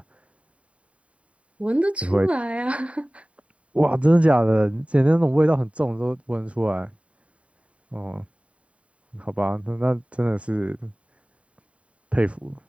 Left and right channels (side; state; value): left; late; 0.064 ms